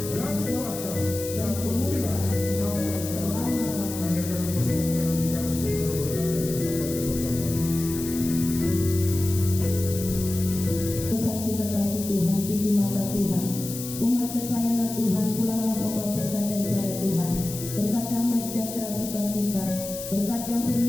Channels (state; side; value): noise; left; hiss, 9 dB below the sound